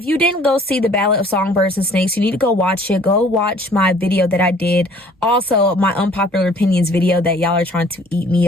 you didn't go see The Ballad of Songbirds and Snakes, you need to go watch it. Go watch my video that I did. Also, my unpopular opinions video that y'all are trying to eat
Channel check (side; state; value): both; normal; correlation 0.55